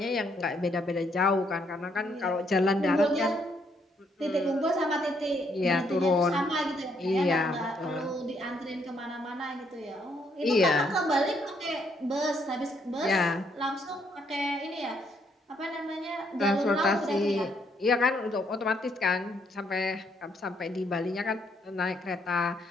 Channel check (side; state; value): both; normal; correlation 0.71